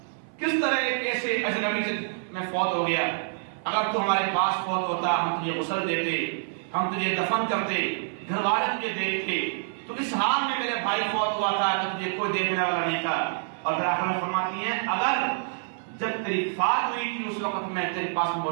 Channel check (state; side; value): silent; left; 60 dB below the other